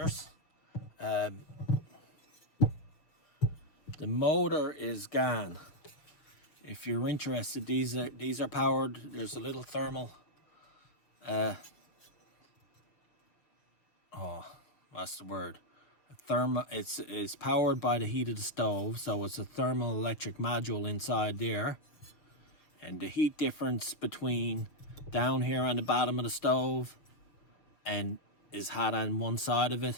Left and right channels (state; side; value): late; right; 6.5 ms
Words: The motor is gone. If you're interested, these are powered. There's a little thermal what's the word? It's powered by the heat of the stove, so it's a thermoelectric module inside there. And the heat difference between down here on the bottom of the stove and is hot on one side of